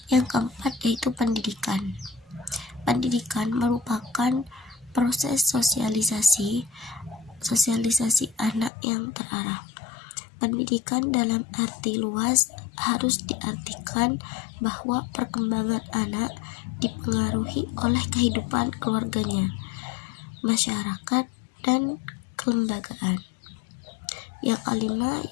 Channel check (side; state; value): right; drops out; at 8.7 s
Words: Yang keempat yaitu pendidikan. Pendidikan merupakan proses sosialisasi anak yang terarah. Pendidikan dalam arti luas harus diartikan bahwa perkembangan anak dipengaruhi oleh kehidupan keluarganya, masyarakat, dan kelembagaan. Yang kelima